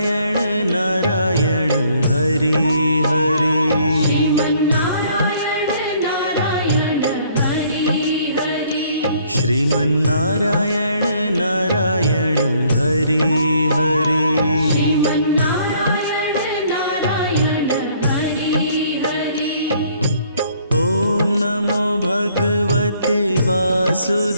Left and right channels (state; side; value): inverted; both; correlation -0.63